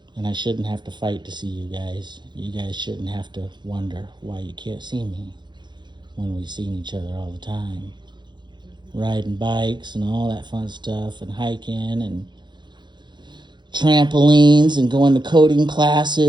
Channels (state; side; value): late; left; 0.22 ms